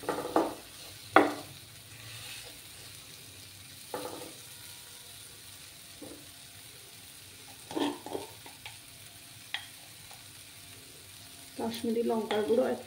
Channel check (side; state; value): both; identical; correlation 1.00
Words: কাশ্মীরি লঙ্কার গুঁড়ো 1